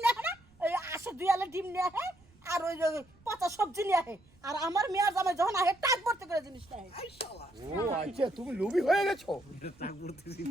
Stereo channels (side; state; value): right; noise; rumble, 29 dB below the sound